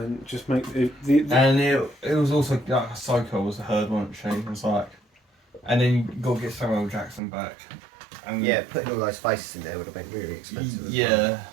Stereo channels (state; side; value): drops out; left; at 7.2 s